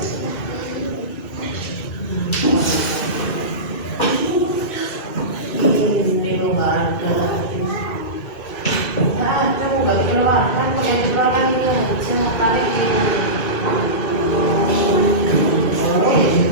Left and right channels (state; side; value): late; right; 1.4 ms